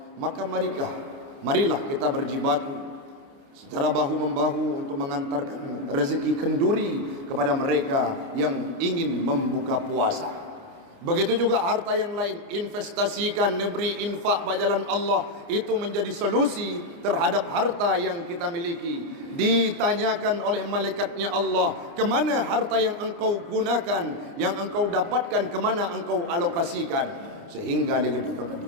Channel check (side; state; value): left; late; 29 ms